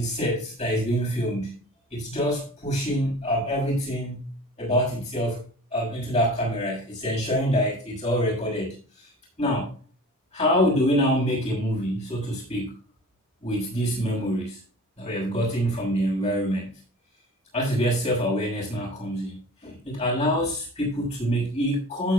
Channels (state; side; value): normal; both; correlation 0.40